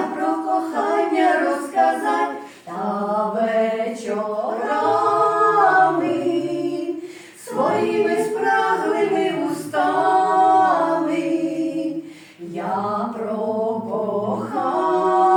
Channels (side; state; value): both; identical; correlation 1.00